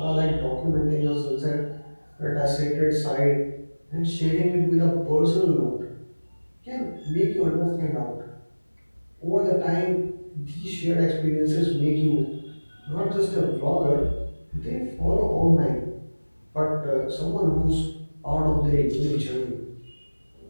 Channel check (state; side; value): inverted; both; correlation -1.00